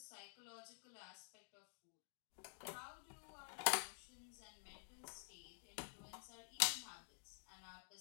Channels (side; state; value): right; silent; digital silence